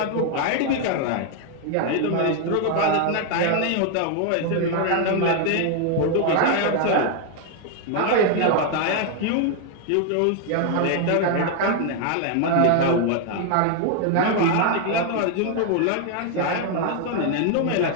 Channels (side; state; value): both; different; correlation 0.00